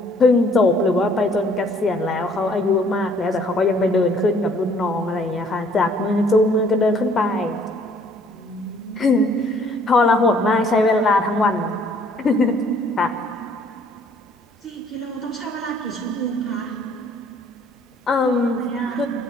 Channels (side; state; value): both; normal; correlation 0.60